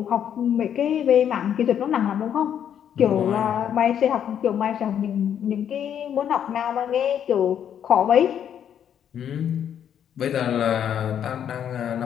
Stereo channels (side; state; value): right; quieter; 9.2 dB